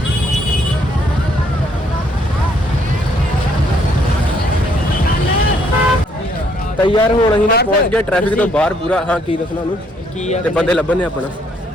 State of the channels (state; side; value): normal; both; correlation 0.68